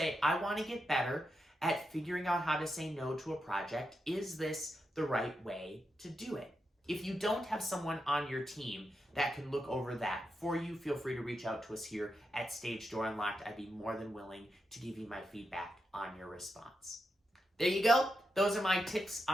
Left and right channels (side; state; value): both; normal; correlation 0.86